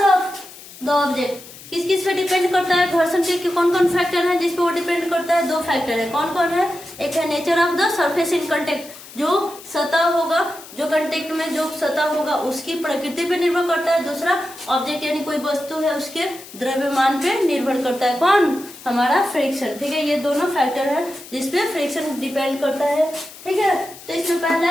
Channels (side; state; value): left; noise; hiss, 17 dB below the sound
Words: द ऑब्जेक्ट। किस किस पे डिपेंड करता है, घर्षण के कौन कौन फैक्टर है जिस पे वो डिपेंड करता है, 2 फैक्टर है। कौन कौन है, एक है nature of the surface in contact, जो सतह होगा, जो कांटेक्ट में जो सतह होगा उसकी प्रकृति पे निर्भर करता है। दूसरा ऑब्जेक्ट यानी कोई वस्तु है उसके द्रव्यमान पे निर्भर करता है, कौन, हमारा फ्रिक्शन, ठीक है। ये दोनों फैक्टर है जिसपे फ्रिक्शन डिपेंड करता है, ठीक है। तो इसमें पहला